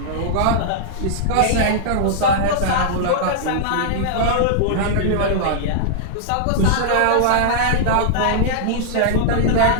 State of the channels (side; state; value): both; different; correlation -0.01